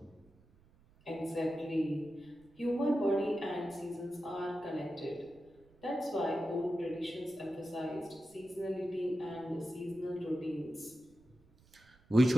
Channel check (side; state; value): right; noise; rumble, 29 dB below the sound